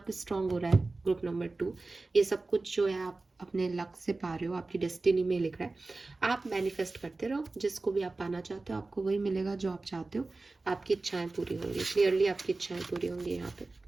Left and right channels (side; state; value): left; quieter; 3.4 dB